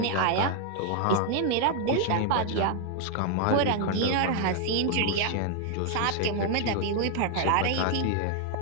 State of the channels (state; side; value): different; both; correlation 0.00